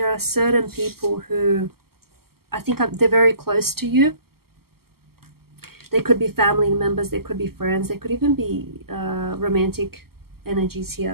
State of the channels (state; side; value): late; left; 0.95 ms